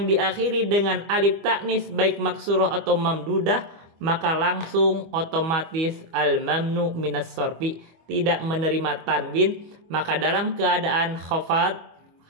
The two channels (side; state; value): left; late; 25 ms